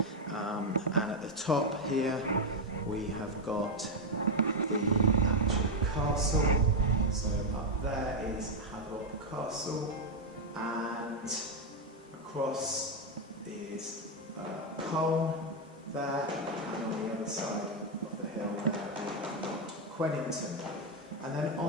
and at the top here we have got the actual castle. So up there is Hatherop Castle, and across is Cole there, and on the other side of the hill there we have got Quennington. And then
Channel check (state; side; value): normal; both; correlation 0.03